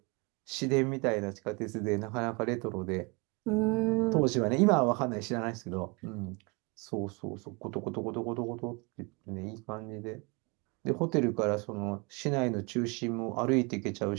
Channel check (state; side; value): quieter; left; 29.0 dB